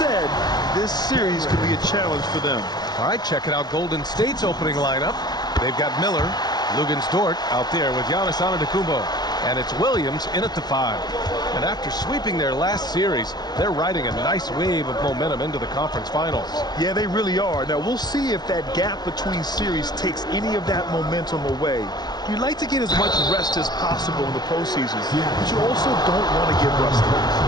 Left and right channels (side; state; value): right; late; 0.19 ms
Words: this series could be a challenge for them. All right, checking out Golden State's opening lineup. They've got Miller, Luguentz-Dort out there with Giannis Antetokounmpo, and it's Williams in at the 5. And after sweeping their last series, they're riding a nice wave of momentum into the conference finals. Yeah, they really are. Now, we'll see if that gap between series takes any of that momentum away. You'd like to get as much rest as possible in the postseason, but you also don't want to get rusty.